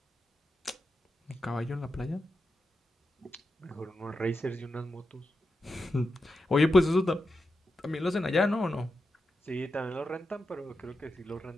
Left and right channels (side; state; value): both; normal; correlation 0.88